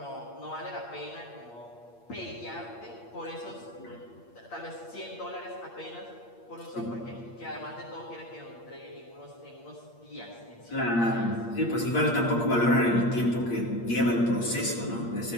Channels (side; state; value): right; late; 8.6 ms